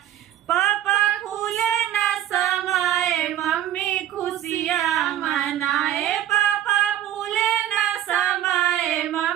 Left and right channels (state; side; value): quieter; left; 11.9 dB